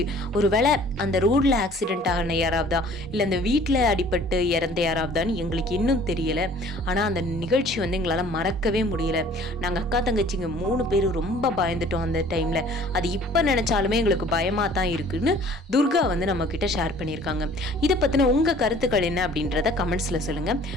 ஒரு வேளை அந்த ரோடில் ஆக்சிடென்ட் ஆகின யாராவதா இல்லை அந்த வீட்டில் அடிபட்டு இறந்த யாராவதான்னு எங்களுக்கு இன்னும் தெரியலை. ஆனால் அந்த நிகழ்ச்சி வந்து எங்களால் மறக்கவே முடியல. நாங்கள் அக்கா தங்கச்சிங்க 3 பேரும் ரொம்ப பயந்துட்டோம் அந்த டைமில். அது இப்போ நினச்சாலுமே எங்களுக்கு பயமாக தான் இருக்குன்னு துர்கா வந்து நம்ம கிட்ட ஷேர் பண்ணியிருக்காங்க. இதை பற்றின உங்கள் கருத்துக்கள் என்ன அப்படின்றத கமெண்ட்ஸில் சொல்லுங்கள்.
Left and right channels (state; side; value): normal; both; correlation 0.52